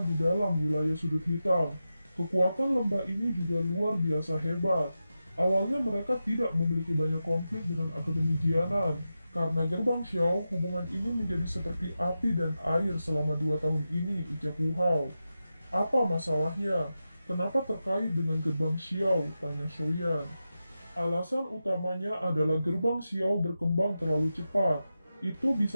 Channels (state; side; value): inverted; both; correlation -0.91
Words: di dalam wilayah sudut hitam. Kekuatan lembah ini juga luar biasa hebat. Awalnya mereka tidak memiliki banyak konflik dengan Akademi Jianan. Karena gerbang Xiao, hubungan ini menjadi seperti api dan air selama 2 tahun ini, ucap Wu Hao. Apa masalahnya? Kenapa terkait dengan gerbang Xiao? Tanya Soyan. Alasan utamanya adalah gerbang Xiao berkembang terlalu cepat. Itu